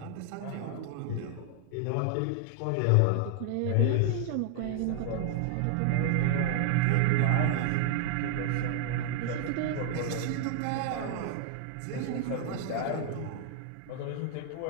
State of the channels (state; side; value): different; both; correlation -0.01